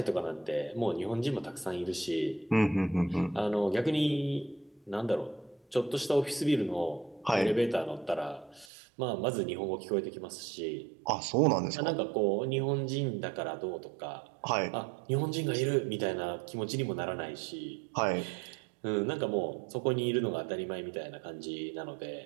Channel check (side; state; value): left; drops out; at 8.7 s